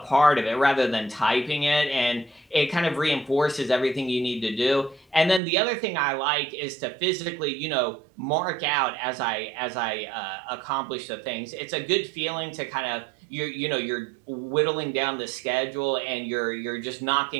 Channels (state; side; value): drops out; left; at 5.4 s